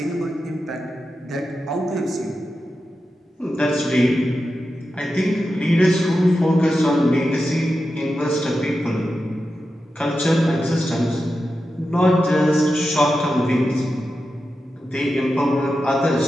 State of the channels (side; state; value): both; normal; correlation 0.90